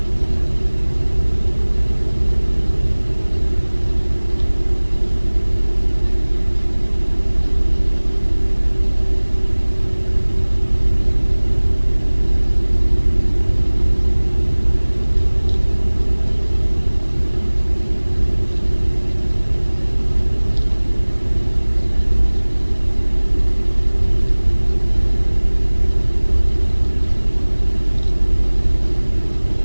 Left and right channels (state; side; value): inverted; both; correlation -1.00